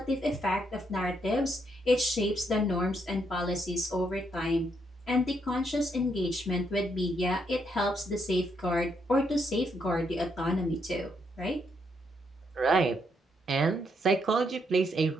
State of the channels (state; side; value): normal; both; correlation 0.76